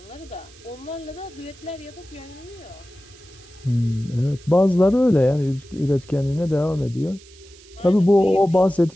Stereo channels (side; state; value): right; noise; hiss, 24 dB below the sound